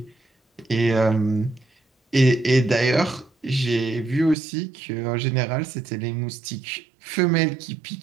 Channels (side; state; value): left; drops out; at 4.4 s